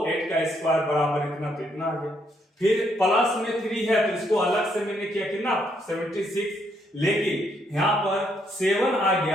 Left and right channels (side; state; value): both; normal; correlation 0.73